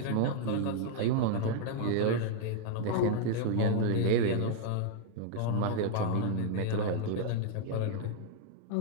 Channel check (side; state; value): both; different; correlation -0.01